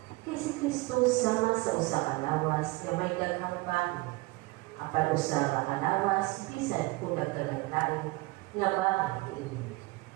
Kay si Kristo sama sa usa ka lawas nga may daghang bago, apan usa ka kalawas bisan kung nagkagandaan nga bago ini.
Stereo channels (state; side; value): quieter; left; 23.0 dB